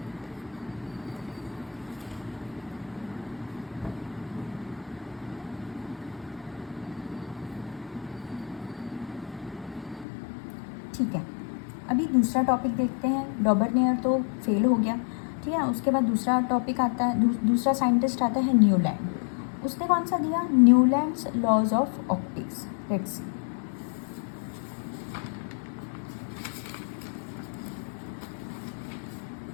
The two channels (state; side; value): drops out; right; at 10.1 s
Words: ठीक है, अभी दूसरा टॉपिक देखते हैं। डॉबर्नियर तो फेल हो गया, ठीक है। उसके बाद दूसरा टॉपिक आता है, दूसरा साइंटिस्ट आता है न्यूलैंड। उसने कौन सा दिया, Newlands laws of octaves. Let's see.